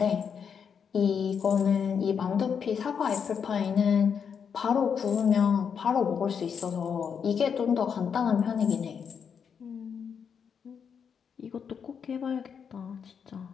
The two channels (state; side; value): quieter; right; 7.0 dB